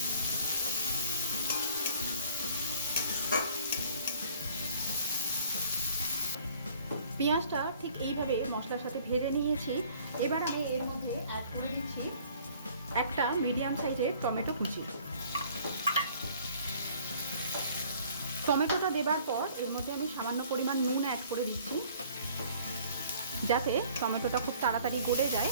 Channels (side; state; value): both; inverted; correlation -0.55